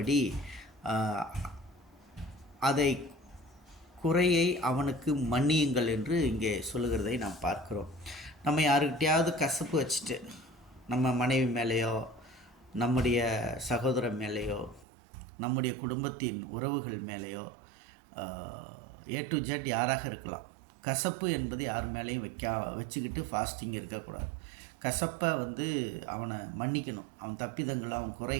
அதை குறையை அவனுக்கு மன்னியுங்கள் என்று இங்கே சொல்லுகிறதை நாம் பார்க்கிறோம். நம்ம யாருக்கிட்டையாவது கசப்பு வச்சுட்டு நம்ம மனைவி மேலேயோ நம்முடைய சகோதரன் மேலேயோ நம்முடைய குடும்பத்தின் உறவுகள் மேலேயோ ஏ டு ஜெட் யாராக இருக்கலாம். கசப்பு என்பது யார் மேலேயும் வச்சுக்கிட்டு ஃபாஸ்டிங் இருக்கக்கூடாது. கசப்பை அவனை மன்னிக்கணும். அவன் தப்பிதங்களை, அவன்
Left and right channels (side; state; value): left; drops out; at 14.9 s